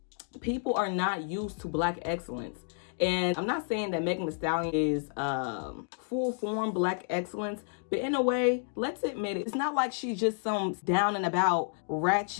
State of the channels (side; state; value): right; silent; 57 dB below the other